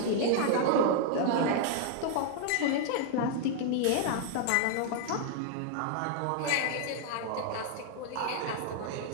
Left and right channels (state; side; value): different; both; correlation 0.00